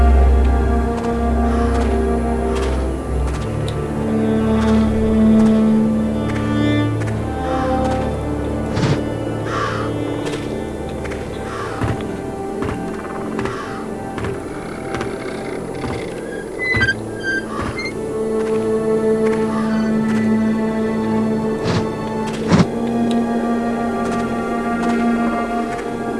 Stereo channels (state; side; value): identical; both; correlation 1.00